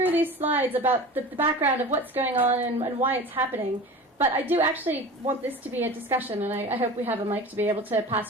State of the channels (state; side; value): normal; both; correlation 0.35